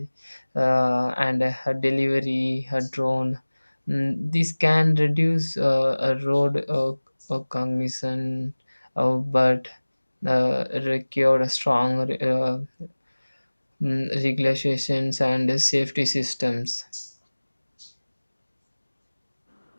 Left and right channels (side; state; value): both; inverted; correlation -1.00